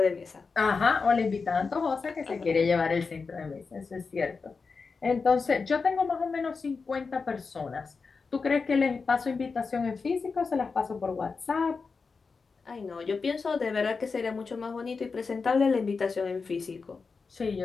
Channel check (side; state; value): right; quieter; 4.7 dB